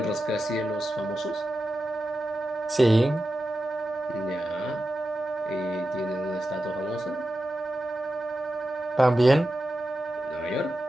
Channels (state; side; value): normal; both; correlation 0.91